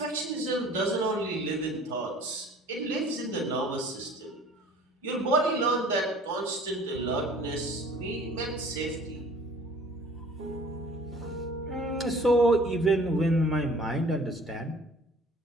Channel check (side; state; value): both; normal; correlation 0.50